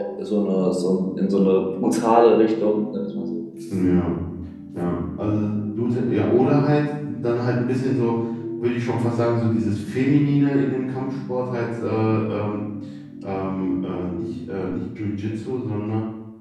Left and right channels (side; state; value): both; identical; correlation 1.00